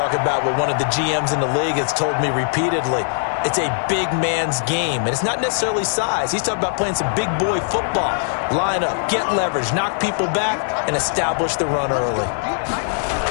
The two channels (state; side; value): silent; right; digital silence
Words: about what one of the GMs in the league has told me repeatedly. It's a big man's game, and it's not necessarily size. He's talking about playing some big boy football. Line up, get leverage, knock people back, and establish the run early.